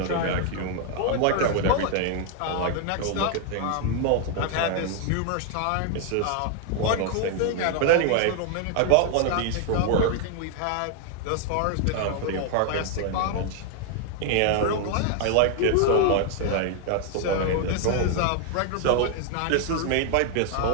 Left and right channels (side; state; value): both; different; correlation 0.00